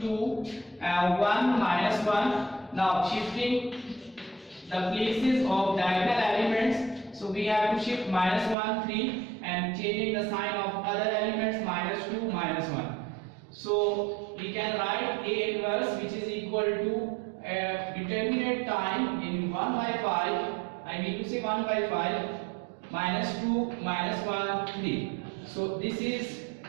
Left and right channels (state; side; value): drops out; left; at 8.6 s